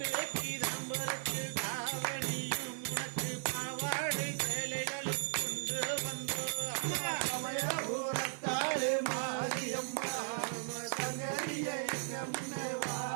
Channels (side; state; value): left; silent; 53 dB below the other